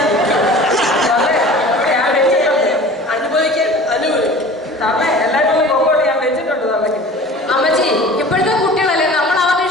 നിൽക്കും. അനുഭവിക്കാൻ തള്ളേ എല്ലാവരും നോക്കോട്ട് ഞാൻ വെച്ചിട്ടുണ്ട് തള്ളക്ക്. അമ്മച്ചി, ഇപ്പോഴത്തെ കുട്ടികളല്ലേ, നമ്മൾ അവരുടെ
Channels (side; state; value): both; normal; correlation 0.42